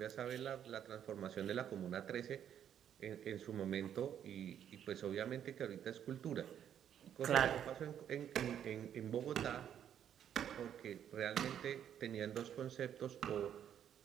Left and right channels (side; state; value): left; quieter; 9.5 dB